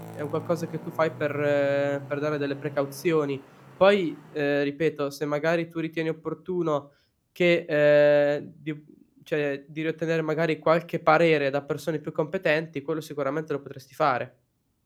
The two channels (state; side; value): identical; both; correlation 1.00